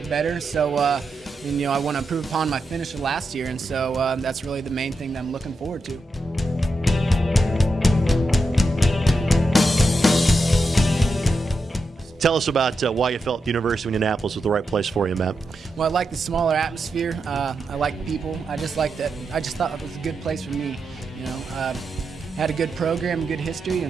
better. So, I want to improve upon my finish of last year, and so that's really the main thing that I'm looking forward to. Tell us about why you felt the University of Indianapolis was the right place for you, Matt. Well, I like the smaller atmosphere. I like people. I just thought it was a good place for me. Had a good program, good history,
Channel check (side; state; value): both; normal; correlation 0.87